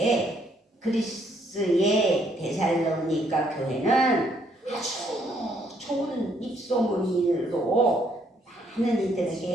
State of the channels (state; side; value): normal; both; correlation 0.69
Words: 그리스의 데살로니가 교회는 아주 좋은 입소문으로 많은